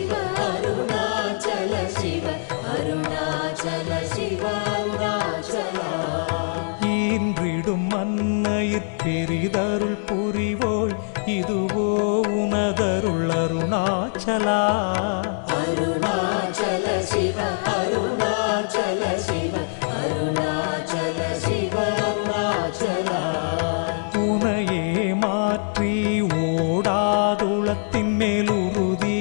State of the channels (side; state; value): right; silent; 63 dB below the other